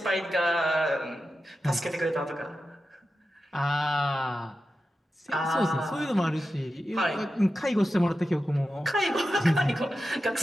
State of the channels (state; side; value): normal; both; correlation 0.92